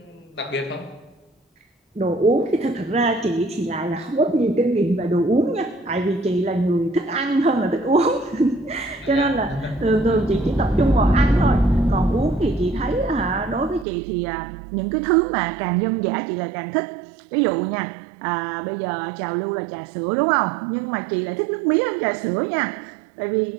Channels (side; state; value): left; drops out; at 13.9 s